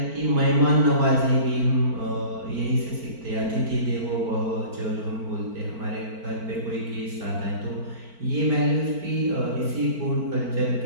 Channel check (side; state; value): left; late; 4.5 ms